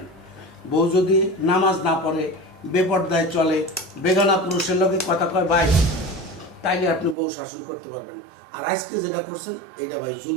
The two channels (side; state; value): left; drops out; at 7.2 s